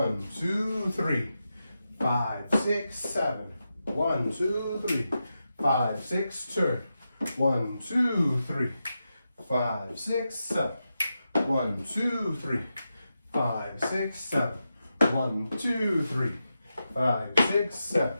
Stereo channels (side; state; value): both; inverted; correlation -0.89